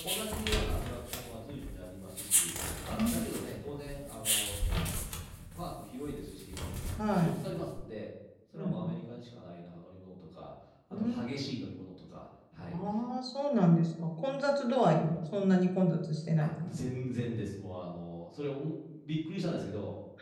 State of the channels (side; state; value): both; identical; correlation 1.00